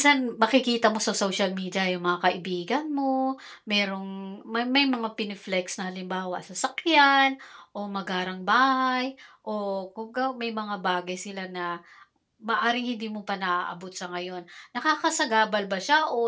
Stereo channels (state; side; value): identical; both; correlation 1.00